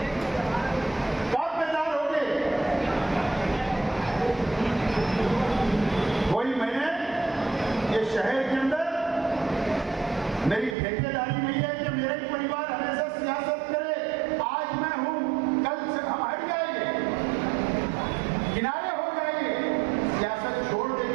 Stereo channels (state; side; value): drops out; left; at 10.8 s